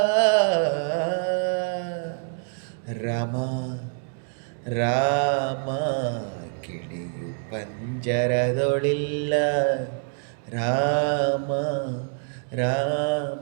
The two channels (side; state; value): left; silent; 61 dB below the other